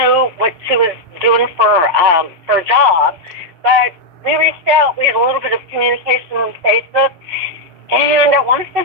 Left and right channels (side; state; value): left; late; 6.3 ms